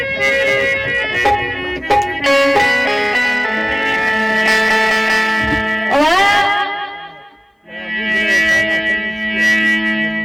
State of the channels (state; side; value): identical; both; correlation 1.00